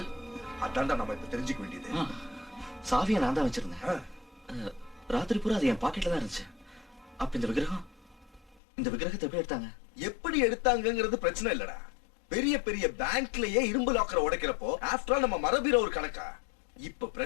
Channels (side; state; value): right; drops out; at 8.6 s